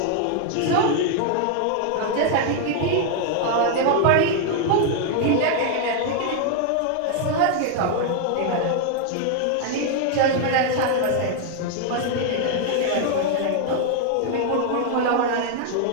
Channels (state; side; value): different; both; correlation 0.00